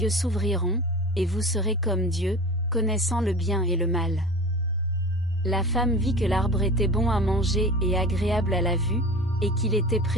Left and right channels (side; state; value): both; normal; correlation 0.35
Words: s'ouvriront, et vous serez comme Dieu, connaissant le bien et le mal. La femme vit que l'arbre était bon à manger et agréable à la vue, et qu'il était